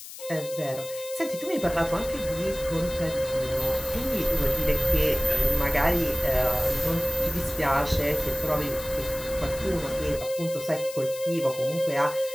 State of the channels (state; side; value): noise; left; hiss, 13 dB below the sound